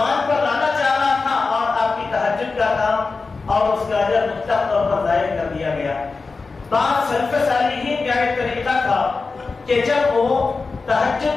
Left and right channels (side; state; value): right; quieter; 4.2 dB